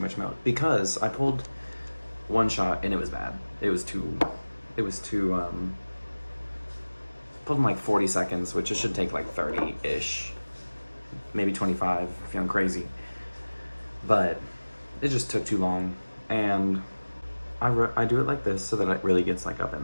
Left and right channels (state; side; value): inverted; both; correlation -1.00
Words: milk because I pulled one shot and it was bad. It was too, pulled in like 40 seconds, which it should take like 30-ish, maybe 25 if I'm crazy. But it just took too long, and I do it like this so that it really gets like up